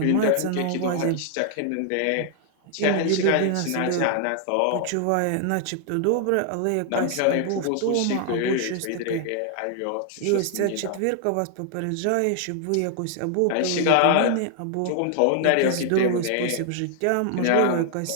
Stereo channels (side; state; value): both; different; correlation 0.00